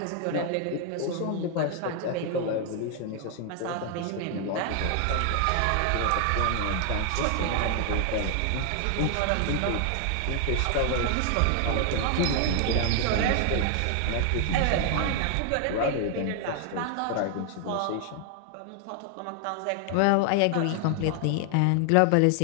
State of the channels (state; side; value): different; both; correlation 0.00